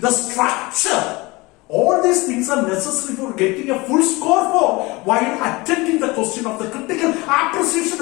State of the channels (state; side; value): quieter; right; 23.3 dB